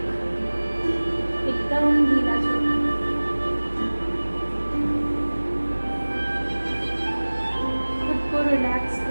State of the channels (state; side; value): inverted; both; correlation -1.00